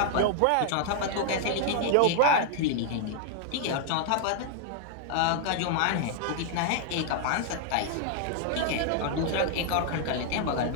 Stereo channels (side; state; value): both; different; correlation 0.00